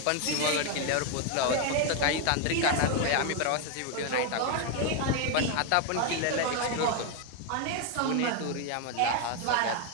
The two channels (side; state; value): both; different; correlation 0.01